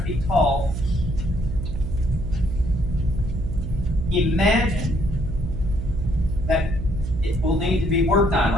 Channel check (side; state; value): right; noise; hum, 5 dB below the sound